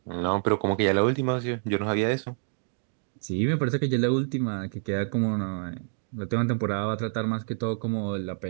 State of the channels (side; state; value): left; silent; digital silence